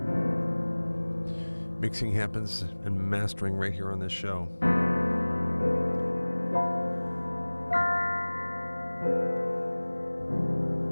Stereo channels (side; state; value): both; inverted; correlation -1.00